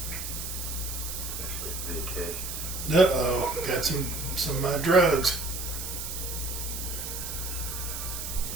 Uh-oh, got some drugs.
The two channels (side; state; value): right; noise; hiss, 5 dB below the sound